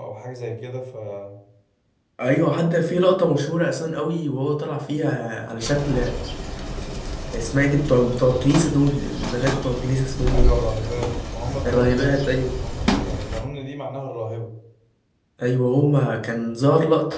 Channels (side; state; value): both; identical; correlation 1.00